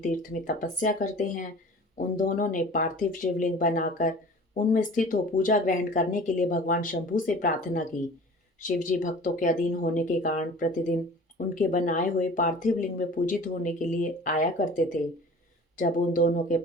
में तपस्या करते हैं, उन दोनों ने पार्थिव शिवलिंग बनाकर उनमें स्थित हो पूजा ग्रहण करने के लिए भगवान शंभु से प्रार्थना की। शिवजी भक्तों के अधीन होने के कारण प्रतिदिन उनके बनाए हुए पार्थिव लिंग में पूजित होने के लिए आया करते थे। जब उन दोनों के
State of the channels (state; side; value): normal; both; correlation 0.43